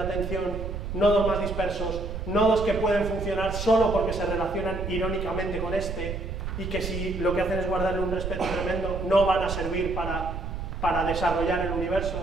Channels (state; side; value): noise; right; rumble, 5 dB below the sound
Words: nodos más dispersos, nodos que pueden funcionar solo porque se relacionan irónicamente con este y que si lo que hacen es guardarle un respeto tremendo, no van a servir para desarrollar el